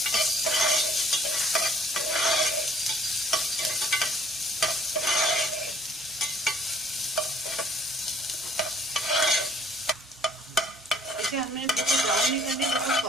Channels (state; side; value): noise; right; hum, 28 dB below the sound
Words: इसे हमें बिल्कुल ब्राउन नहीं करनी, बिल्कुल